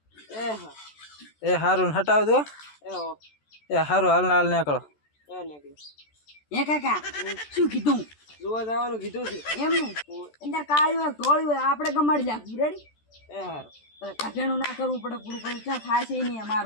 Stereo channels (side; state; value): right; late; 14 ms